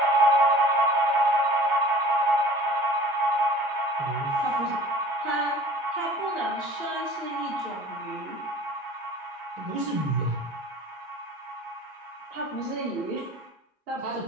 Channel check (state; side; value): normal; both; correlation 0.46